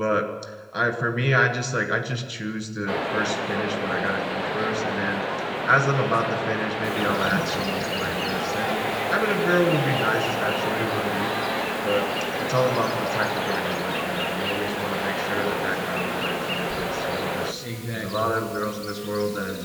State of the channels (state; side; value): identical; both; correlation 1.00